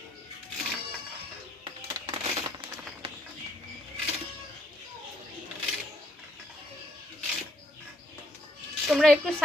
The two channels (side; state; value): both; normal; correlation 0.70